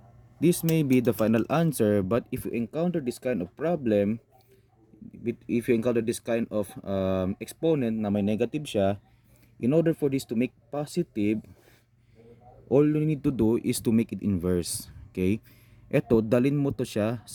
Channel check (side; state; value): both; identical; correlation 1.00